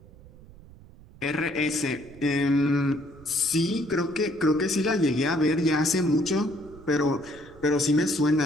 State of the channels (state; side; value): noise; right; rumble, 22 dB below the sound